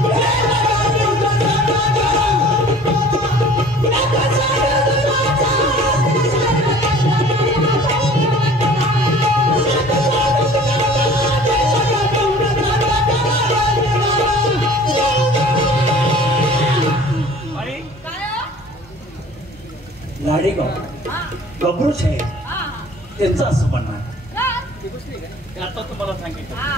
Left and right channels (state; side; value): normal; both; correlation 0.48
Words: गबरू साहेब त्यांचं असं म्हणणं आता तुम्हाला सांगितलं